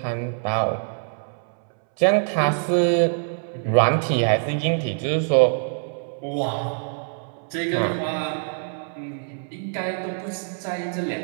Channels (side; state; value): left; silent; 62 dB below the other